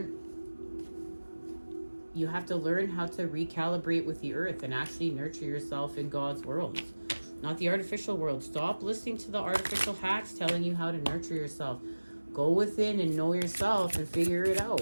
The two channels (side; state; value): both; inverted; correlation -1.00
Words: You have to learn how to recalibrate with the earth and actually nurture yourself in God's world. not the artificial world. Stop listening to the artificial hacks telling you how to nurture yourself. Go within and know yourself and figure it